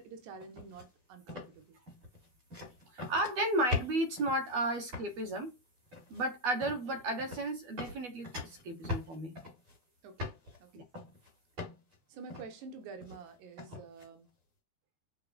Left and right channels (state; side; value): late; left; 12 ms